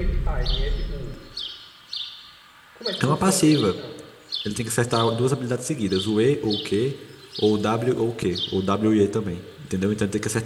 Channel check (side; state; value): both; identical; correlation 1.00